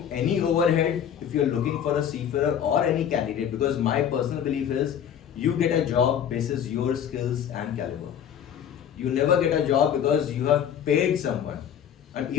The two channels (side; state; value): right; quieter; 9.0 dB